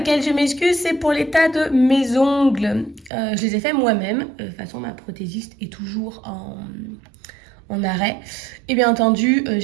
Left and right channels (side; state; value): left; drops out; at 3.1 s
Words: je m'excuse, c'est pour l'état de mes ongles. Je les ai faits moi-même. De toute façon, ma prothésiste est toujours en arrêt. Et bien entendu,